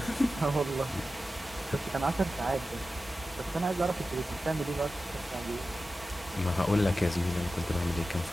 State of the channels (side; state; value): both; normal; correlation 0.94